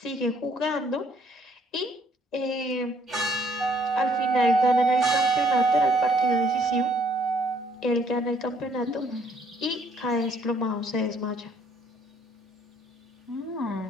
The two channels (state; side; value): normal; both; correlation 0.65